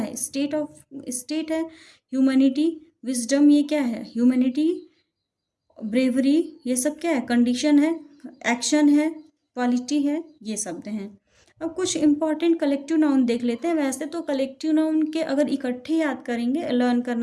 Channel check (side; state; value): both; identical; correlation 1.00